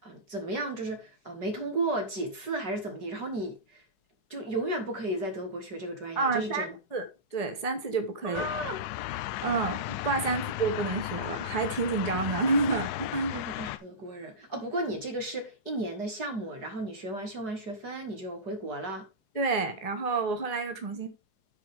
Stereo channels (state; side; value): late; right; 4.7 ms